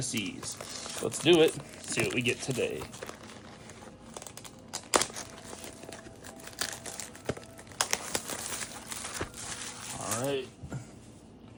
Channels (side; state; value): both; identical; correlation 1.00